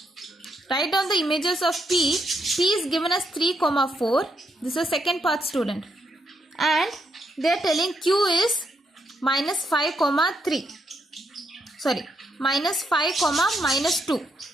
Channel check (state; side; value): normal; both; correlation 0.79